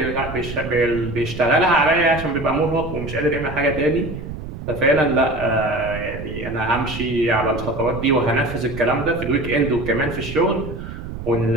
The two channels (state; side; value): noise; right; rumble, 9 dB below the sound